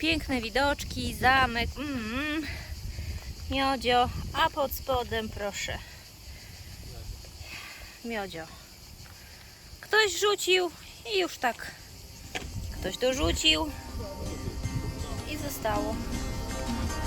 widoczki, zamek, miodzio, a pod spodem proszę, miodzio. Ktoś rzucił i już tak, ktoś dorzucił i zostało.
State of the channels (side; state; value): both; identical; correlation 1.00